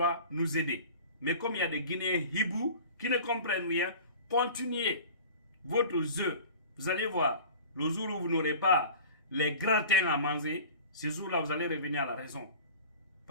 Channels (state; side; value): inverted; both; correlation -0.40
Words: nous aider. Mais comme il y a des Guinéens hiboux qui ne comprennent rien, continuez votre jeu. Vous allez voir, le jour où vous n'aurez pas les gratins à manger, ce jour-là, vous allez revenir à la raison.